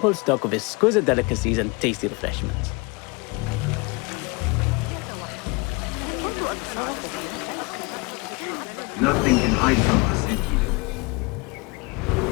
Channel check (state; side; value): quieter; right; 27.3 dB